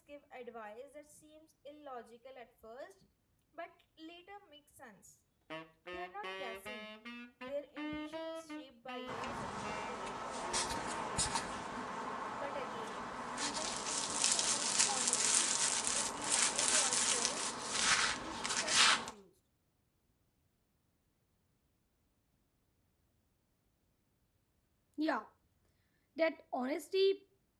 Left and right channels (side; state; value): both; identical; correlation 1.00